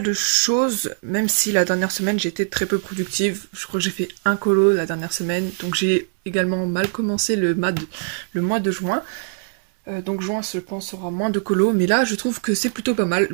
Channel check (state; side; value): silent; left; 64 dB below the other